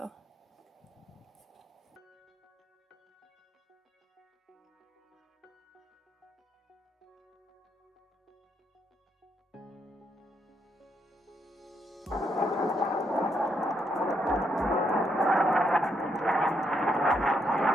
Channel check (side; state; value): both; normal; correlation 0.77